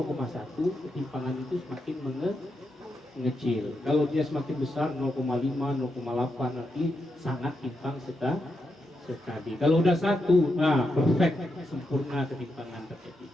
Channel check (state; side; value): normal; both; correlation 0.84